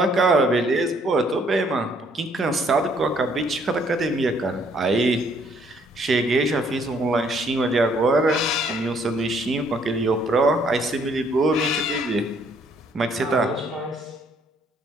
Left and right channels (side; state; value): both; normal; correlation 0.65